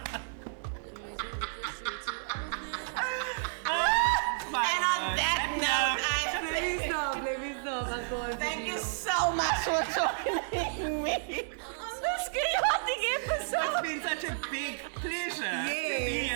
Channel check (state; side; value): silent; left; digital silence